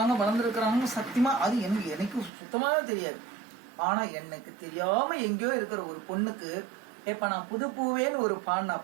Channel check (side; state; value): left; drops out; at 2.3 s